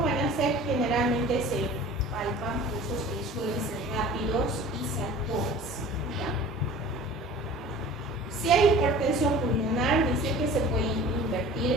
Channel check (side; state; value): both; normal; correlation 0.43